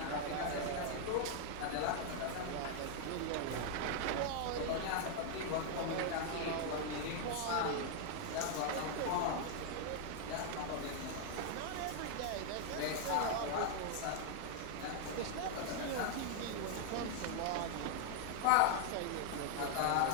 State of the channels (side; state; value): both; different; correlation 0.00